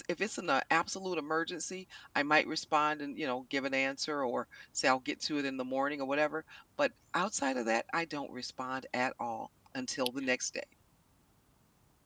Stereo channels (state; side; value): identical; both; correlation 1.00